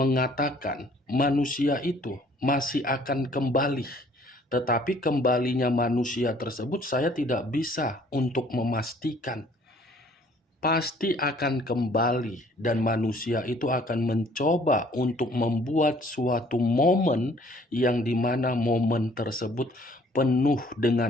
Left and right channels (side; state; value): both; normal; correlation 0.58